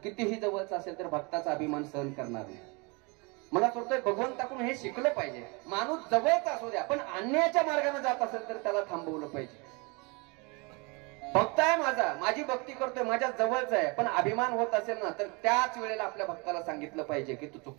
कितीही जवळचा असेल तर भक्ताचा अभिमान सहन करणार नाही. मला वाटतंय भगवंताकडून हे शिकलं पाहिजे. माणूस जवळचा असू द्या पण अन्यायाच्या मार्गाने जात असेल तर त्याला थांबवलं पाहिजे. भक्त आहे माझा, माझी भक्ती करतोय, माझ्या जवळचा आहे, पण अभिमान होत असेल ना तर त्याच वेळेला आपल्या भक्ताला सांगितलं पाहिजे की तू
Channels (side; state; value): left; quieter; 29.5 dB